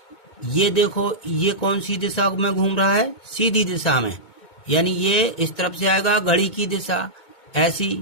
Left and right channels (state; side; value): late; right; 2.2 ms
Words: ये देखो, ये कौन सी दिशा में घूम रहा है, सीधी दिशा में, यानी ये इस तरफ से आएगा घड़ी की दिशा ऐसी,